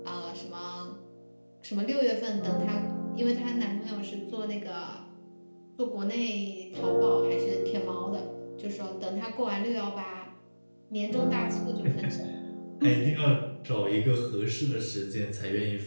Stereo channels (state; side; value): inverted; both; correlation -1.00